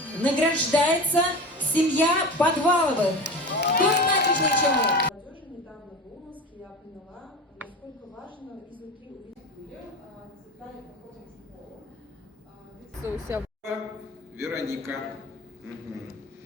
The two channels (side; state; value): both; normal; correlation 0.30